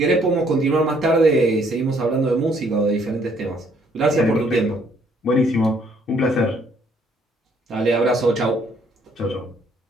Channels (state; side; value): normal; both; correlation 0.65